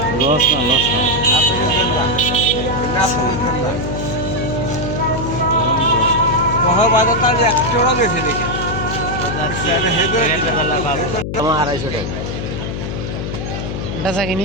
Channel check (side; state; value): left; noise; hum, 5 dB below the sound